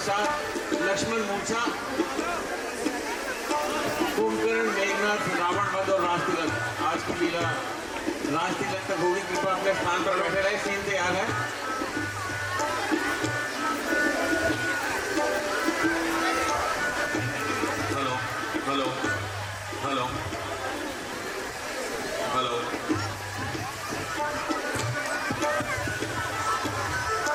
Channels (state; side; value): identical; both; correlation 1.00